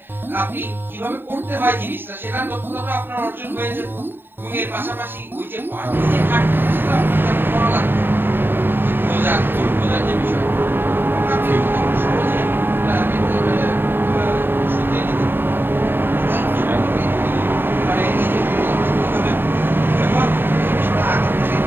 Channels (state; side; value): late; left; 0.097 ms